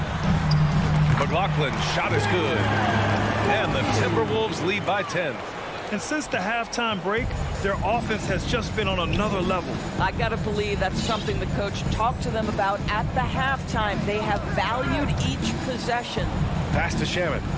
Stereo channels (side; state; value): both; identical; correlation 1.00